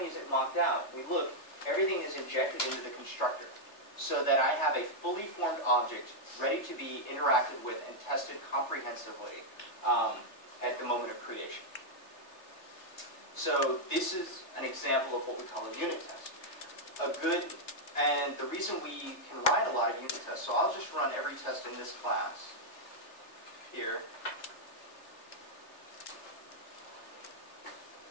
is it mocked out, we look, everything is injected into the constructor so that I have a fully formed object ready to be interacted with and tested comprehensively at the moment of creation. So this is an example of what we call a unit test. And the reason we can write a lot of unit tests, so I'll just run every test in this class here.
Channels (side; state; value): right; late; 3.3 ms